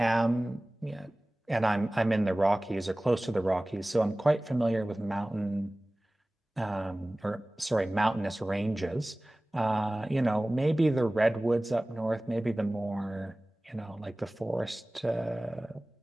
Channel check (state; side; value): normal; both; correlation 0.98